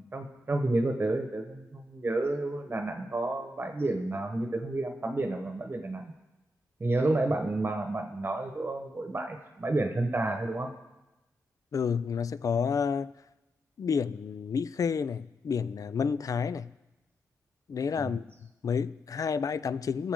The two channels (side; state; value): both; normal; correlation 0.83